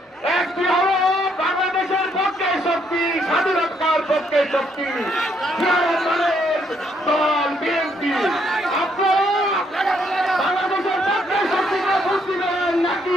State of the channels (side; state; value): both; normal; correlation 0.71